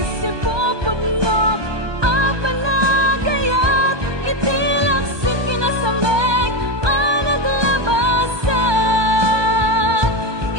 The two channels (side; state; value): left; late; 1.2 ms